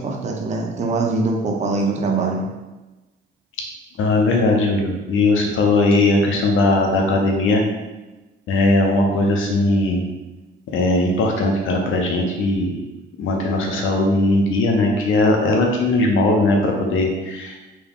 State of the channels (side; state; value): both; normal; correlation 0.49